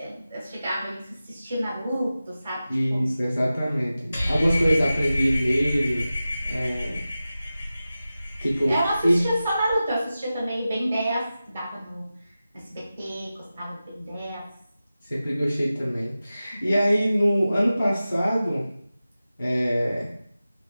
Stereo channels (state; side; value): inverted; both; correlation -0.95